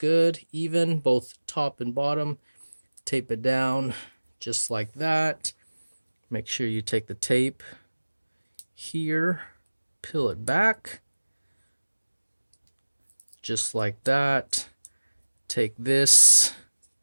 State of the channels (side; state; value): both; inverted; correlation -1.00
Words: even both top and bottom. Tape it down just like that. Make sure you take the tape here, peel it back just like that. Take this,